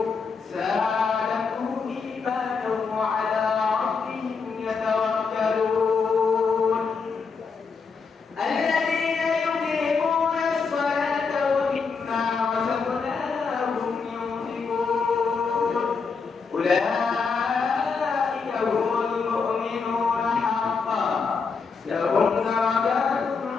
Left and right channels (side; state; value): right; quieter; 5.1 dB